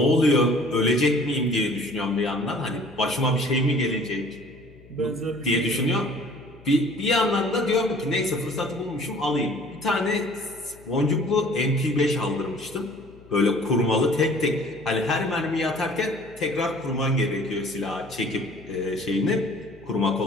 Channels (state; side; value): noise; left; hum, 23 dB below the sound